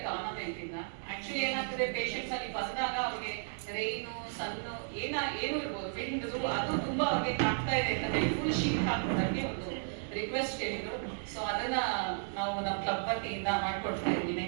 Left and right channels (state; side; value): silent; left; digital silence